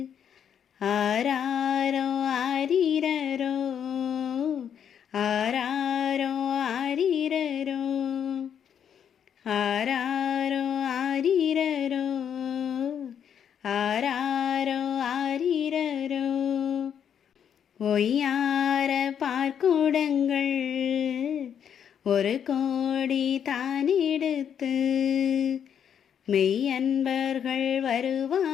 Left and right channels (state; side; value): quieter; right; 8.4 dB